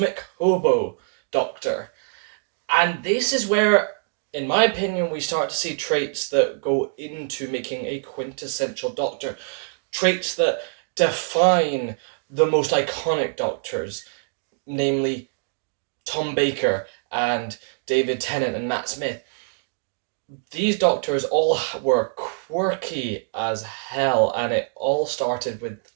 Hobo Doctor. And this is where, in my opinion, we start to see traits that go into making a quintessential Doctor. Traits that define the most iconic Doctors, namely Tom Baker and David Tennant and Matt Smith. These Doctors all were quirky as hell, and it all started with,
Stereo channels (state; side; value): silent; left; digital silence